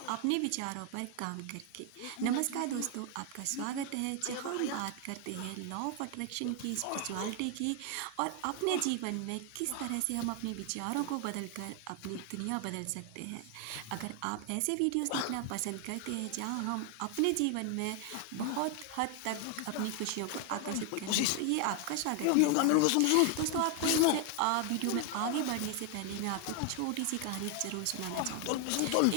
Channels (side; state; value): both; different; correlation 0.00